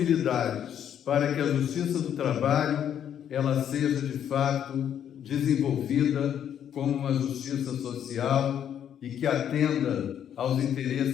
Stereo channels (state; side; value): quieter; right; 9.4 dB